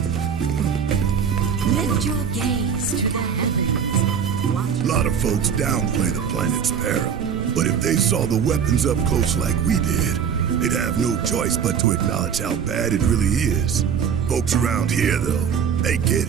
Lift your gaze to the heavens. Watch. A lot of folks downplay the planet's peril, but if they saw the weapons up close like we did, they'd have no choice but to acknowledge how bad it really is. Folks around here, though, they get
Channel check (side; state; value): left; quieter; 7.3 dB